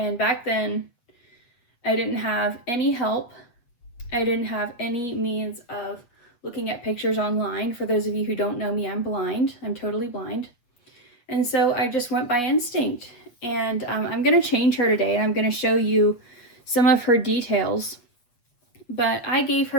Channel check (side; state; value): right; late; 8.4 ms